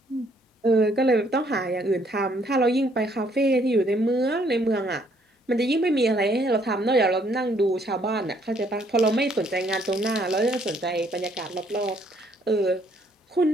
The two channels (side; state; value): both; normal; correlation 0.66